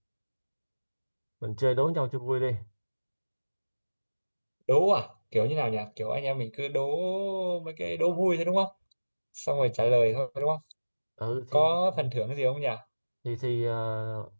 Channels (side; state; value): both; inverted; correlation -1.00